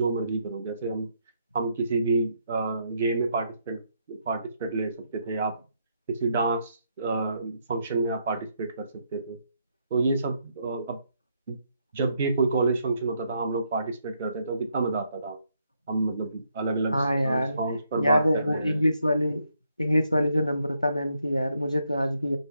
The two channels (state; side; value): inverted; both; correlation -0.75